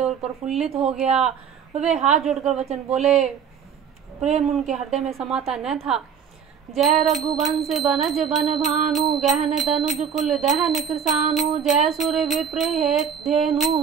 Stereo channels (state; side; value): quieter; left; 7.5 dB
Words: और प्रफुल्लित हो गया। वे हाथ जोड़कर वचन बोले, प्रेम उनके हृदय में समाता न था। जय रघुवंश बनज बन भानु, गहन तनुज कुल दहन कृसानु, जय सुर विप्र धेनु